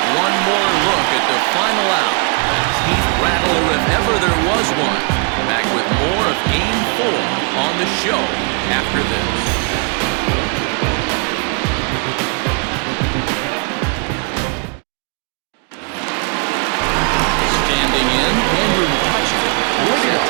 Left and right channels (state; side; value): quieter; left; 35.0 dB